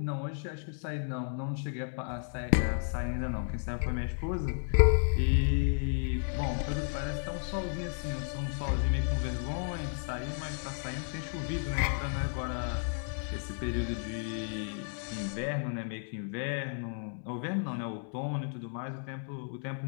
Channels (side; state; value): right; silent; 56 dB below the other